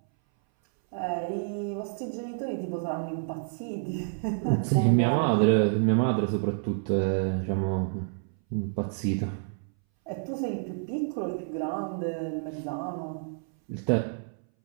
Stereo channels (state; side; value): silent; left; 59 dB below the other